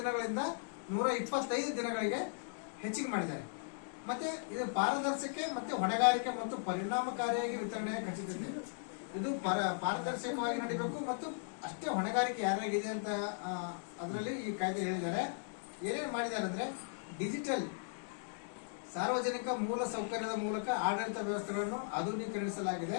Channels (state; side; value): silent; right; digital silence